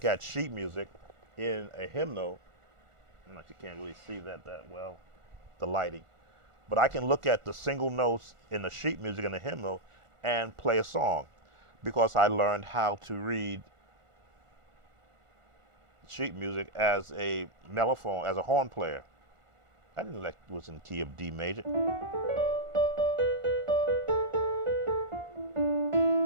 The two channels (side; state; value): left; late; 1.4 ms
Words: at sheet music in a hymnal. You can't really see that well, the lighting. But I can look at the single notes in the sheet music in the hymnal and play a song because I learned how to read sheet music as a mellophone, as a horn player. I didn't know that was in key of D major.